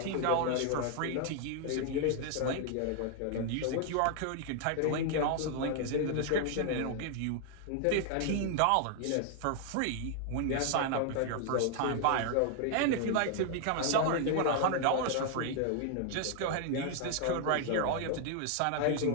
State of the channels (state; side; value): different; both; correlation 0.00